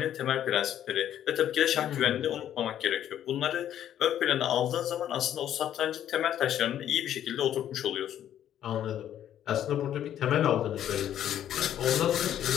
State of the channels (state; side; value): quieter; right; 10.8 dB